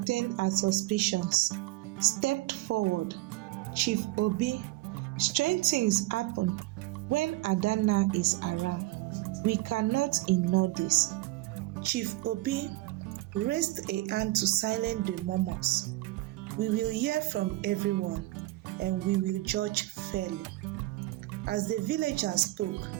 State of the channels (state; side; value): quieter; left; 19.0 dB